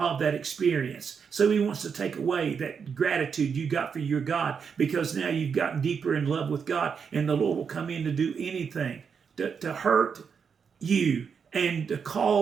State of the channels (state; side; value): quieter; left; 6.4 dB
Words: that experience. So he wants to take away that gratitude you got for your God, because now you've gotten deeper in love with God, and the Lord will come in to do anything to hurt you and to